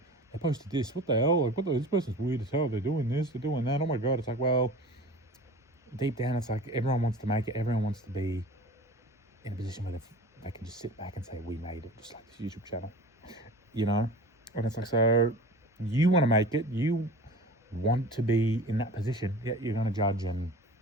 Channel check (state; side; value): normal; both; correlation 0.39